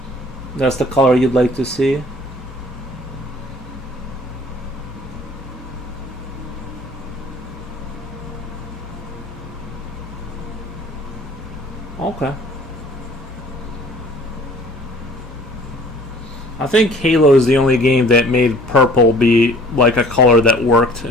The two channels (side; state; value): both; normal; correlation 0.52